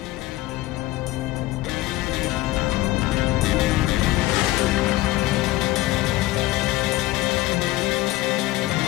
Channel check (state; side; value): quieter; right; 17.3 dB